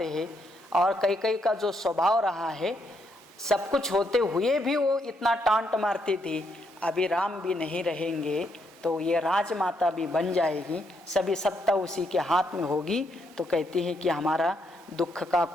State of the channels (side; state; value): both; normal; correlation 0.76